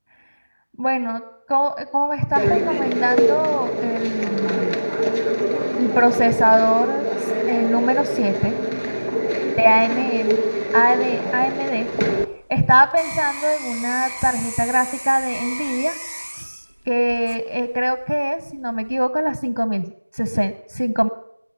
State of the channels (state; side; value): inverted; both; correlation -1.00